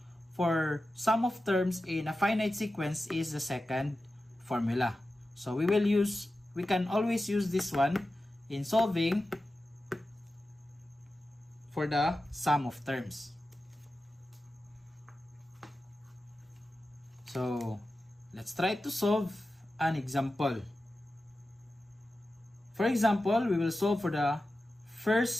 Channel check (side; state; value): both; normal; correlation 0.93